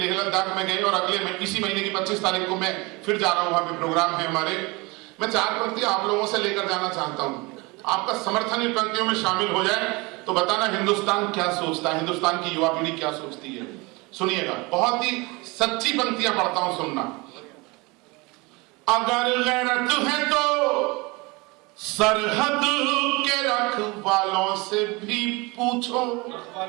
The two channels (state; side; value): quieter; left; 25.5 dB